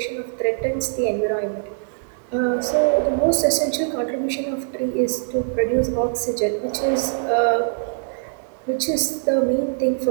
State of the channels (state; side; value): silent; left; digital silence